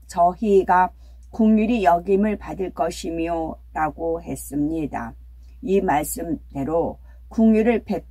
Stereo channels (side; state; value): both; identical; correlation 1.00